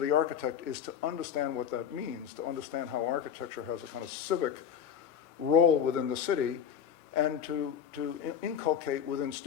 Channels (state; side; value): quieter; right; 8.4 dB